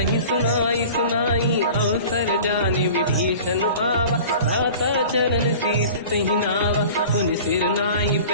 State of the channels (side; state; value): both; inverted; correlation -0.41